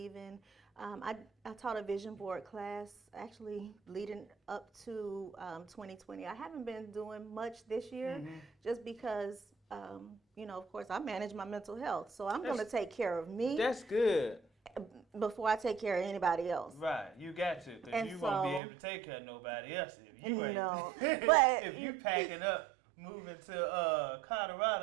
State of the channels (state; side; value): drops out; left; at 18.6 s